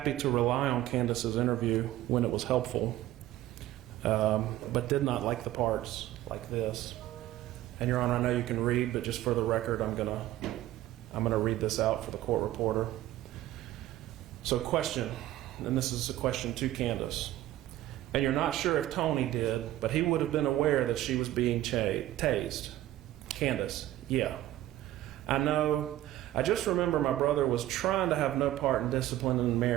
to rely on Candace's interview when it was helpful, but did not like the parts like this. And Your Honor, I know you can read, but just for the record, I'm gonna read this out for the court reporter. So question, and this is a question to Candace. And you're not sure if Tony did, but he would have been aware that she was being tased. Candace, yeah. I know. I just remember my brother was trying to have no part in disciplining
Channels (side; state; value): left; quieter; 14.4 dB